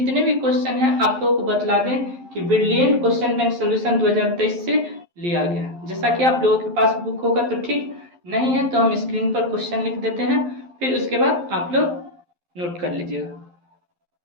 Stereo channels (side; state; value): left; late; 11 ms